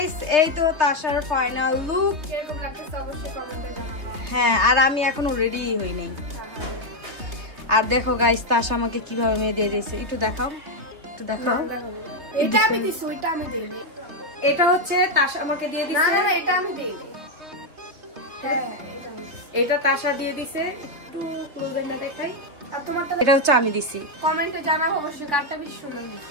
এই তো তাশার ফাইনাল লুক, কিরকম লাগতেছে অবশ্যই কমেন্টে জানাবেন। হ্যাঁ, আর আমি এখনো রেডি হই নাই। আর দেখো গাইস, তাশা আমাকে কিভাবে মেহেদি দিয়েছে, একটু দেখাও, একটু দেখাও। এটা আমি দিছি, ওইটা আমি দেইনি। এটা হচ্ছে তাশা আমাকে দিয়ে দিছে। না, এটা আমি দেইনি, এটা তাশা দিয়ে দিছে। একটু ক্লোজ এন্ড দেখাই। আর তোমারটা? এটা হচ্ছে আমি দিছি। কমেন্টে জানাও অবশ্যই কারটা বেশি সুন্দর হয়েছে।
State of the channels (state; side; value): late; left; 2.9 ms